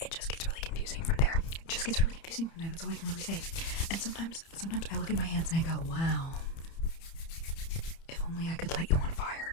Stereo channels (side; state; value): right; late; 30 ms